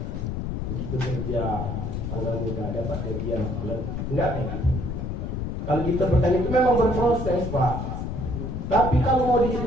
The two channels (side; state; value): left; noise; rumble, 3 dB below the sound